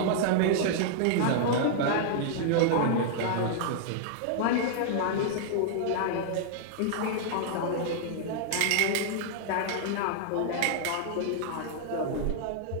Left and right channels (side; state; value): both; different; correlation -0.01